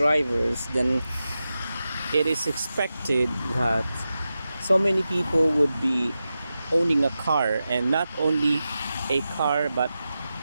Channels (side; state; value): both; inverted; correlation -0.92